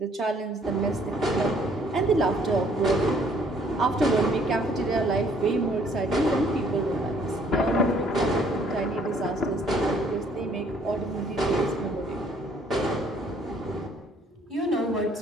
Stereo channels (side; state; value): both; normal; correlation 0.62